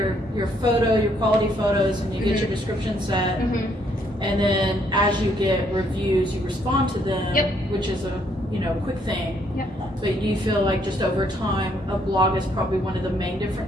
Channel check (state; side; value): normal; both; correlation 0.69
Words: photo, your quality photos, and you get your description set, and then as you get reviews, you respond to them, which is a quick thing. But you feel like just over time, a blog is probably one of the main